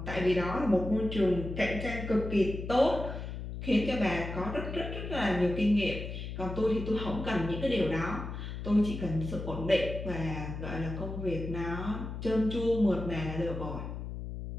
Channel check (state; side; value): noise; left; hum, 7 dB below the sound